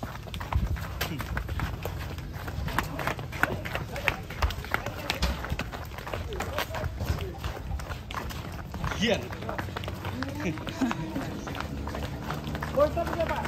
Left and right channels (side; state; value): both; identical; correlation 1.00